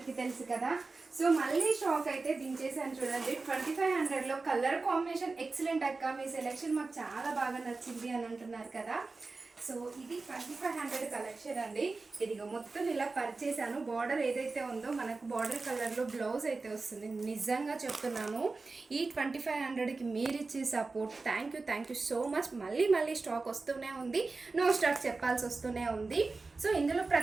తెలుసు కదా. సో మళ్ళీ స్టాక్ అయితే దించేసాను చూడండి. 2500లో కలర్ కాంబినేషన్ ఎక్సలెంట్ అక్క, మీ సెలెక్షన్ మాకు చాలా బాగా నచ్చింది అని అంటున్నారు కదా. సో ఇది 2500 కలెక్షన్ అండి. ఇదిగో మొత్తం ఇలా పర్చేసాను. బార్డర్ ఏదైతే ఉందో మనకు బార్డర్ కలర్లో బ్లౌజ్ అయితే వస్తుంది. నిజంగా చెప్తున్నాను, ఈ 2500కి మీరు ఇచ్చే support thank you so much. మళ్ళీ స్టాక్ వస్తూనే ఉంది, నో స్టాక్ చెప్పాల్సి వస్తూనే ఉంది. సో ఇందులో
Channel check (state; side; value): quieter; left; 3.8 dB